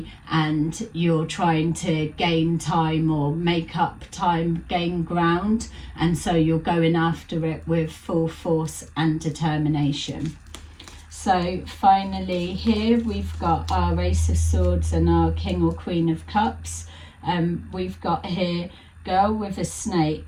and you're trying to gain time or make up time, gain ground, and so you're going after it with full force and determination. So finally here we've got our Ace of Swords and our King or Queen of Cups. We've got here girl with a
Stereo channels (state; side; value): identical; both; correlation 1.00